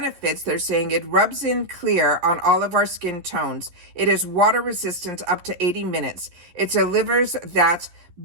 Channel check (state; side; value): late; left; 11 ms